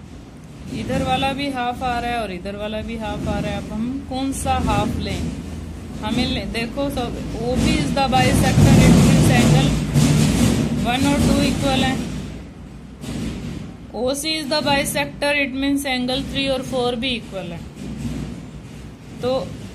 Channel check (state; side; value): identical; both; correlation 1.00